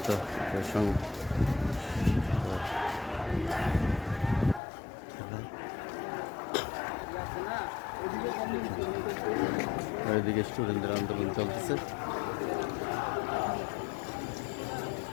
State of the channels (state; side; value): drops out; right; at 4.6 s